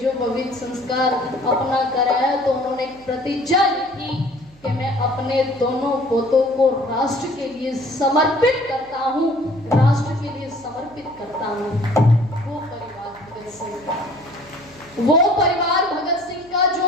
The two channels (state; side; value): noise; right; hum, 27 dB below the sound